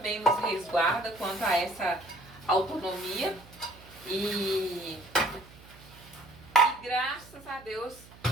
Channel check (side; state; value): right; noise; hum, 21 dB below the sound